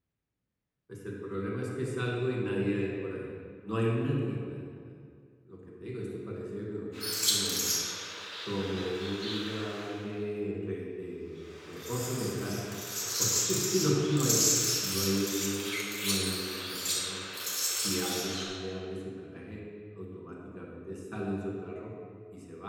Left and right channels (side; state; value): both; identical; correlation 1.00